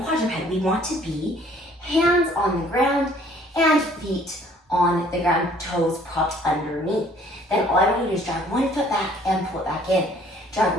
quadruped, we want to be hands on the ground and feet on the ground, toes propped underneath. Then all I want you to do is drag 1 foot back and pull it back in. Drag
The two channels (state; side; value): normal; both; correlation 0.58